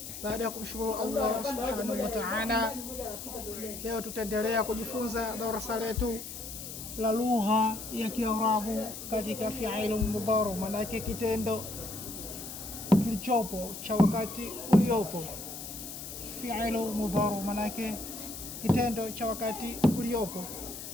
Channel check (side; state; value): left; noise; hiss, 9 dB below the sound